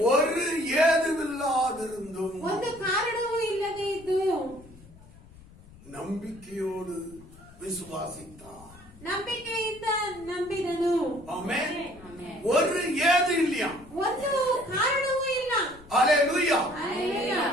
ஒரு ஏதுமில்லாதிருந்தும் ಒಂದು ಕಾರಣವೂ ಇಲ್ಲದೆ ಇದ್ದು நம்பிக்கையோடு விசுவாசித்தான். ನಂಬಿಕೆಯಿಂದ ನಂಬಿದನು. ஆமென். Amen. ஒரு ஏது இல்லையா, ಒಂದು ಕಾರಣವೂ ಇಲ್ಲ. ஹalleluya. ಹಲ್ಲೆಲೂಯಾ.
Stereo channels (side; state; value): left; noise; rumble, 22 dB below the sound